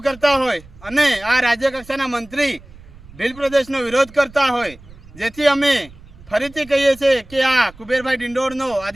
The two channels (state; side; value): noise; right; rumble, 21 dB below the sound